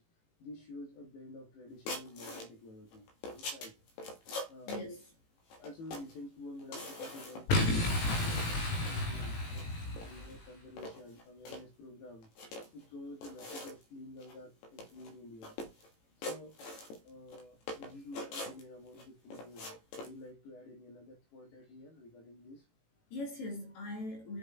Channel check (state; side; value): late; right; 18 ms